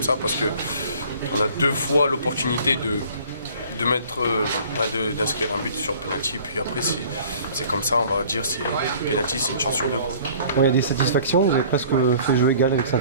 ça, parce qu'on a 2 fois l'opportunité d'inscrire un but sur penalty, puis après c'est comme ça, on va dire, penalty c'est une chance sur 2. Il y a des satisfactions, vous avez presque fait jeu égal avec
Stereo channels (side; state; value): both; inverted; correlation -0.50